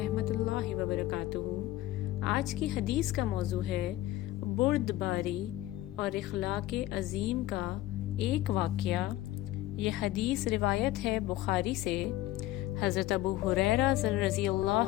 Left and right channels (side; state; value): right; quieter; 15.6 dB